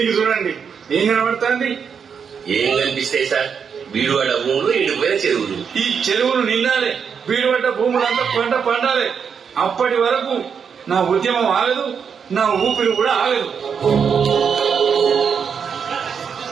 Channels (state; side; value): quieter; left; 6.7 dB